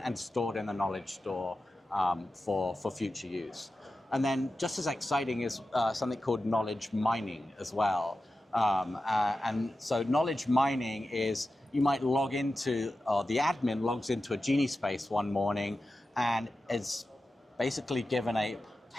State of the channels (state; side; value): normal; both; correlation 0.93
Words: stored in the knowledge store for future use. And then just as exciting is something called knowledge mining as well. And so knowledge mining is you might log into, or the admin logs into a Genie space one morning and is basically given a